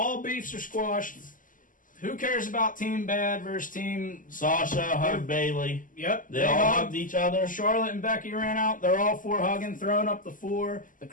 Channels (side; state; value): right; late; 0.38 ms